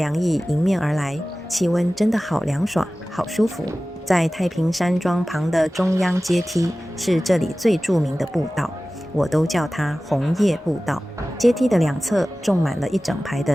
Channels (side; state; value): both; normal; correlation 0.97